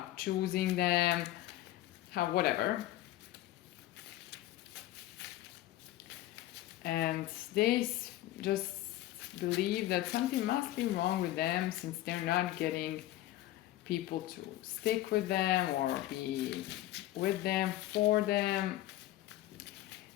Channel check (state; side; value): quieter; right; 14.9 dB